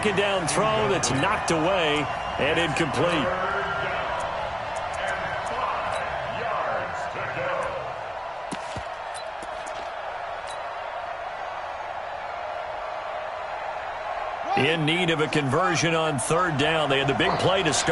down throw that's knocked away and incomplete. In need of a conversion on 3rd down. They had the big play to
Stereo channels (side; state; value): both; identical; correlation 1.00